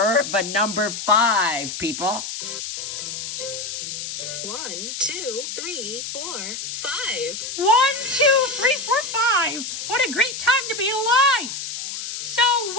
the number 5, people. 1, 2, 3, 4, 5. 1, 2, 3, 4, 5. What a great time to be alive. So, wait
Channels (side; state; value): left; noise; hiss, 6 dB below the sound